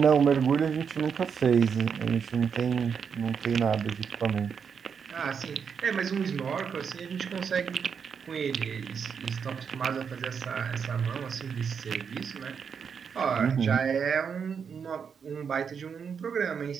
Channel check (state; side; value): quieter; left; 6.6 dB